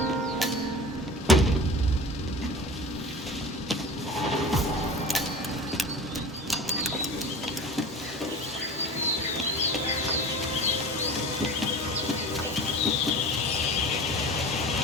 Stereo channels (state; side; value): normal; both; correlation 0.36